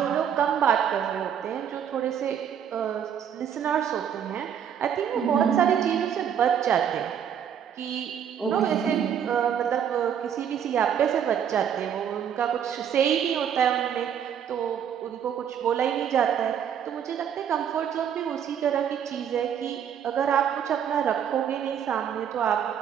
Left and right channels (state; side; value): quieter; left; 8.7 dB